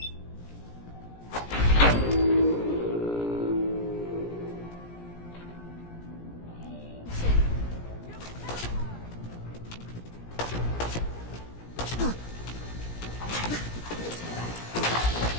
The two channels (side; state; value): right; late; 17 ms